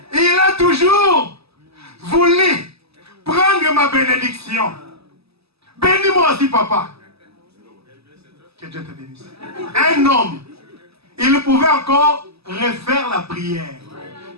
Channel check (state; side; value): late; left; 0.78 ms